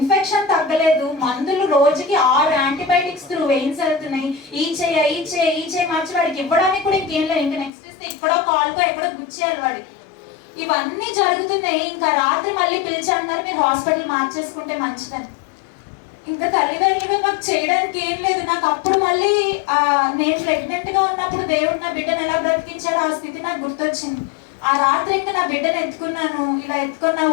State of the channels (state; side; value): drops out; right; at 7.7 s